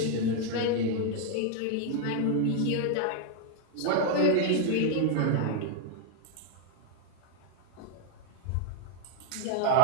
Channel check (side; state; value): both; different; correlation 0.00